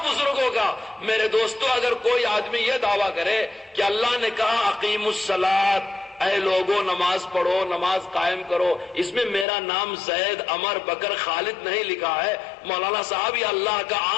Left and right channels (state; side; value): drops out; right; at 9.5 s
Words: بزرگوں کا۔ میرے دوستو، اگر کوئی آدمی یہ دعویٰ کرے کہ اللہ نے کہا اقیم الصلاۃ، اے لوگوں نماز پڑھو، نماز قائم کرو، اس میں میرا نام زید، عمر، بکر، خالد نہیں لکھا ہے، مولانا صاحب یہ اللہ کا